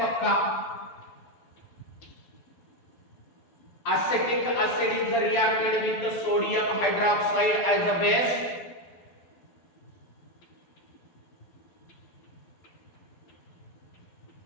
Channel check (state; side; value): late; right; 12 ms